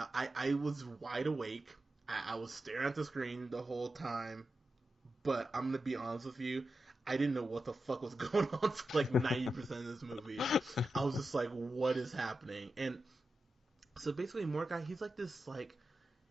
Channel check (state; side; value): normal; both; correlation 0.90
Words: I was wide awake. I was staring at the screen the whole time. But I'm gonna be honest with you. I didn't know what the fuck was going on for like 90% of this movie. I was just like, what is happening? And so basically Mordecai, he's like this, like,